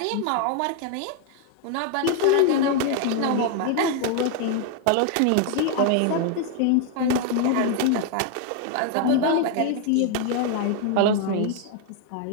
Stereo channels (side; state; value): both; different; correlation 0.01